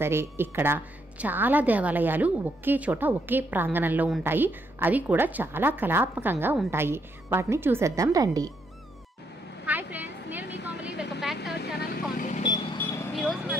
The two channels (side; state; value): both; normal; correlation 0.76